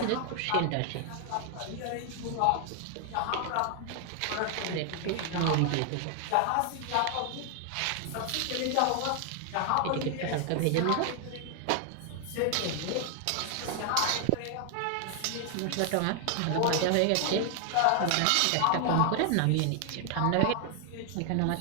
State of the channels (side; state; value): both; different; correlation 0.00